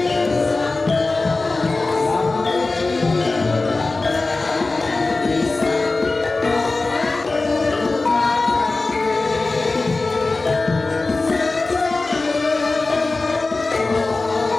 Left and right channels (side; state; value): right; quieter; 3.4 dB